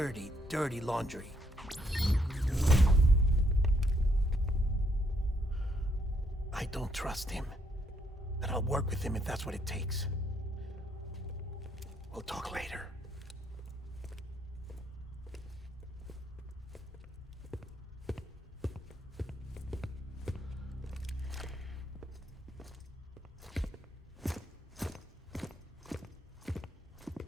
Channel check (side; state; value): both; normal; correlation 0.72